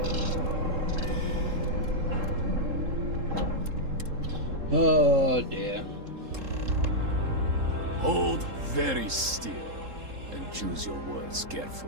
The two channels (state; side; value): late; left; 3.7 ms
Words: Oh dear. Hold very still and choose your words